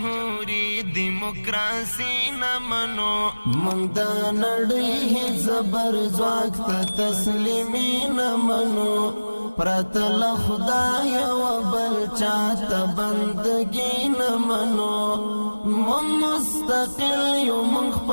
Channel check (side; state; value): both; inverted; correlation -1.00